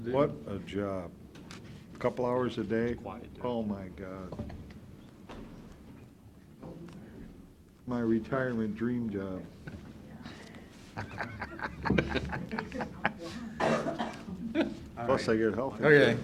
What a job. Couple hours a day? Quiet day. Oh, my God. My retirement dream job. Plus, I get health okay.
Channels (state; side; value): identical; both; correlation 1.00